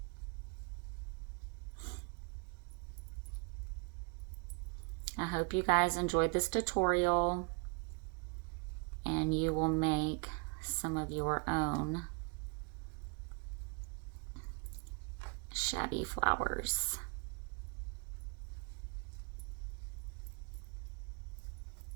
I hope you guys enjoyed this tutorial and you will make some of your own shabby flowers.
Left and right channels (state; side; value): quieter; left; 34.9 dB